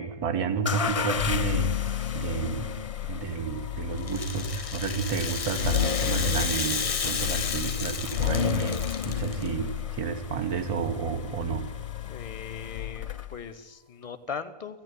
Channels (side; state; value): left; late; 1.6 ms